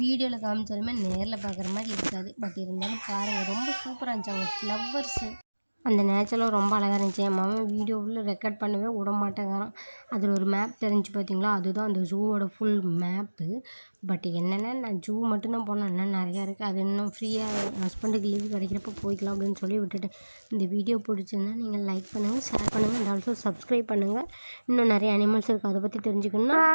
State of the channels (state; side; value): inverted; both; correlation -1.00